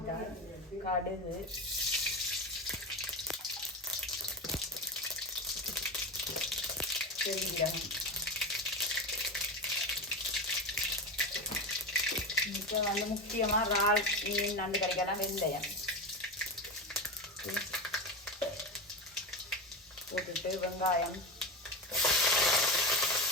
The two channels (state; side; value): normal; both; correlation 0.20